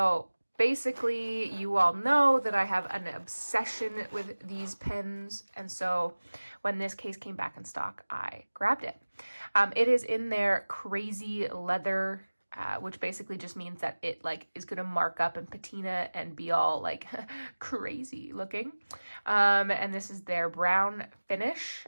basically, you all know that I have an obsession with these pens, and so when this case came back in stock, I grabbed it. It is in their crazy leather, which basically just means that it is gonna mark up and patina and be all crazy looking. And this is their brown finish.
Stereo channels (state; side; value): inverted; both; correlation -1.00